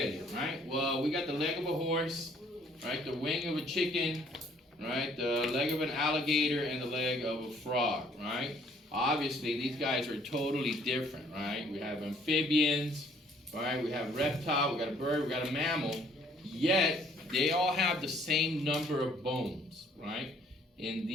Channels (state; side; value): normal; both; correlation 0.61